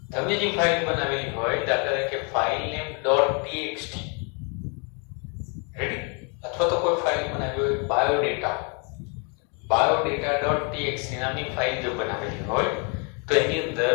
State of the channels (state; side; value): quieter; right; 35.8 dB